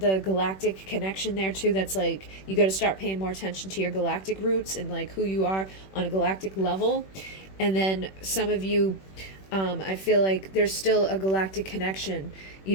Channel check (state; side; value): late; right; 21 ms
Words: galactic connection there too. That's like, you got to start paying more attention to your galactic roots and like who you are on a galactic level. And then some of you, I feel like there's still a galactic connection, you